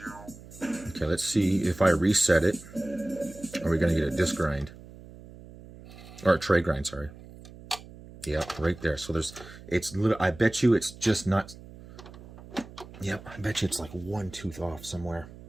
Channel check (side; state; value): right; noise; hum, 18 dB below the sound